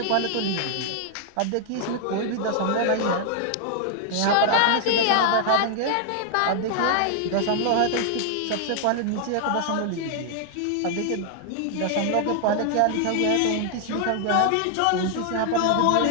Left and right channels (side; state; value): both; different; correlation 0.00